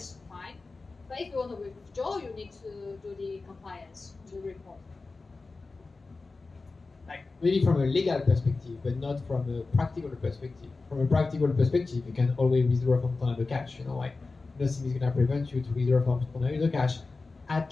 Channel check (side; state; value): right; quieter; 3.8 dB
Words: fine. But if you want to withdraw, you need to do the compliance to report. Like, maybe from a legal perspective, but not from a practical perspective. From a practical perspective, you can always withdraw from Tornado.Cash. Like, nothing is going to prevent you to withdraw from Tornado.Cash,